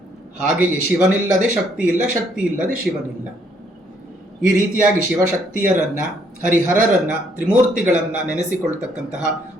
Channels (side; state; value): both; normal; correlation 0.68